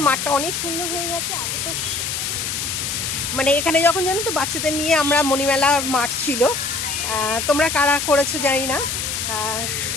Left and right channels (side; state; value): left; noise; hiss, 2 dB below the sound